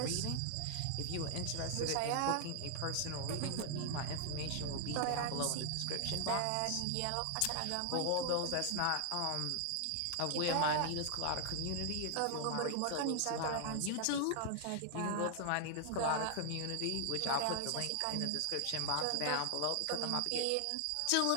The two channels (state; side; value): different; both; correlation 0.00